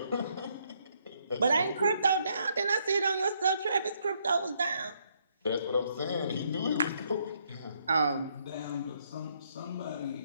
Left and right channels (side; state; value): both; inverted; correlation -0.72